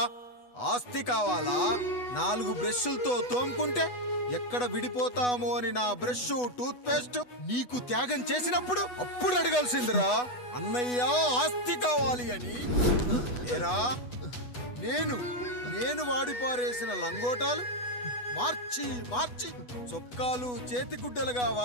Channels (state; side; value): late; right; 8.1 ms